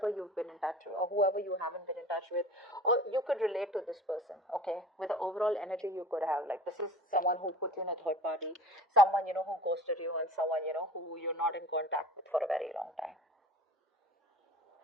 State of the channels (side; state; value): both; normal; correlation 0.41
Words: you've been in touch with, or whoever you haven't been in touch with, or you could relate to this person, okay, with the overall energy you could have. Like, this is someone who put you in a third party, someone, who ghosted you, and someone, who you're not in contact with for a very long time.